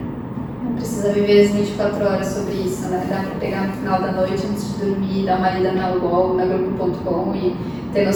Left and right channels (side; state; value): both; identical; correlation 1.00